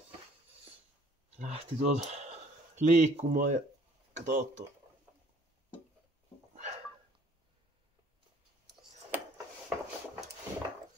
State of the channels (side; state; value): both; normal; correlation 0.57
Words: lähti tuolta liikkumaan ja kato tuo.